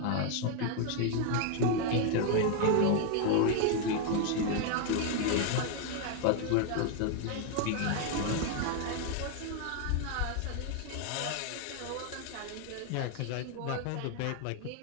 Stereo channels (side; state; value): both; different; correlation 0.01